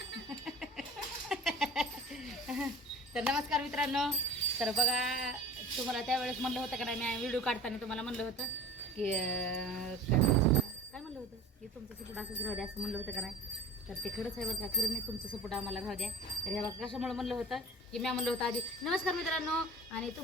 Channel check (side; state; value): both; normal; correlation 0.39